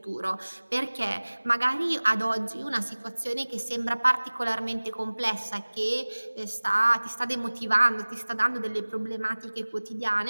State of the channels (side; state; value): both; inverted; correlation -1.00